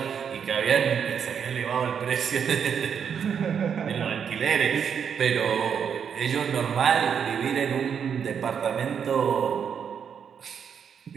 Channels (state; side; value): quieter; left; 7.5 dB